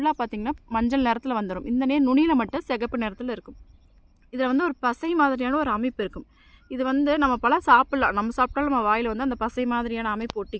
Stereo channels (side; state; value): both; identical; correlation 1.00